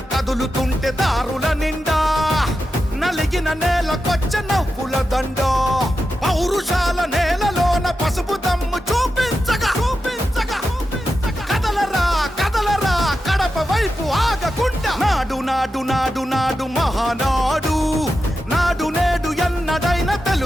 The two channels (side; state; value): both; normal; correlation 0.90